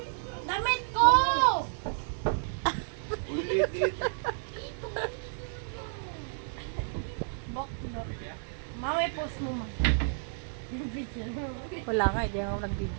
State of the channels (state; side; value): silent; left; digital silence